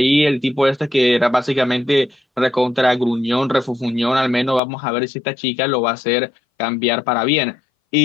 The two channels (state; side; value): drops out; right; at 4.6 s